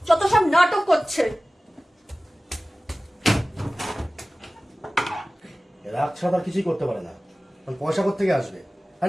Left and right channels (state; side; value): normal; both; correlation 0.97